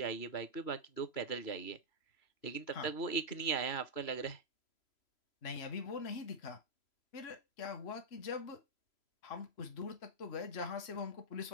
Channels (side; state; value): right; late; 3.0 ms